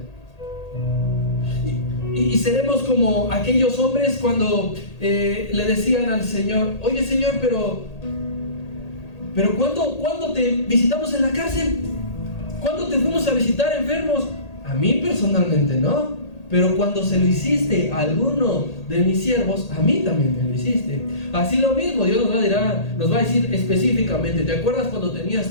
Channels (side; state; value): right; late; 1.8 ms